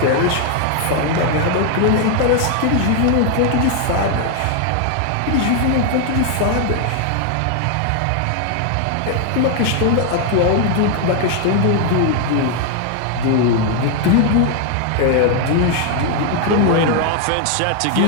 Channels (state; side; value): different; both; correlation 0.00